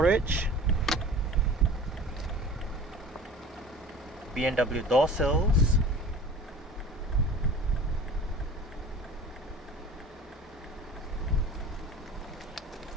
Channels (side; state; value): both; normal; correlation 0.42